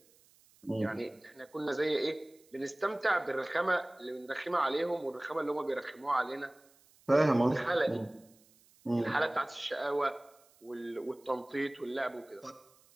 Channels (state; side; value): noise; right; hiss, 30 dB below the sound